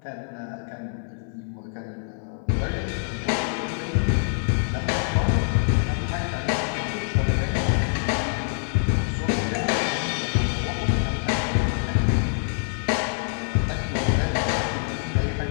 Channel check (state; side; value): silent; right; 59 dB below the other